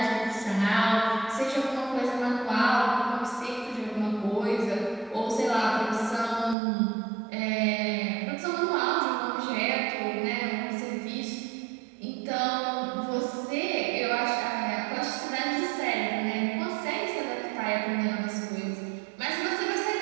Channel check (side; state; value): left; drops out; at 6.6 s